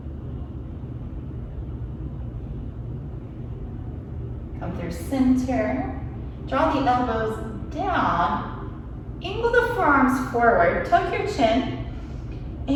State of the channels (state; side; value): identical; both; correlation 1.00